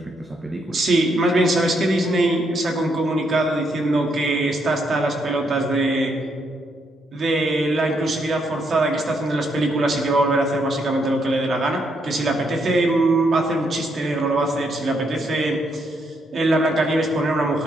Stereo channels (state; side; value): normal; both; correlation 0.76